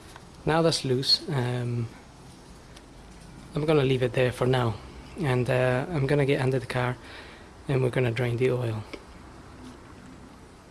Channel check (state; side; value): identical; both; correlation 1.00